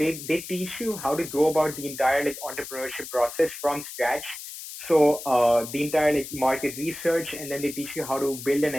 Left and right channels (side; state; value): left; noise; hiss, 11 dB below the sound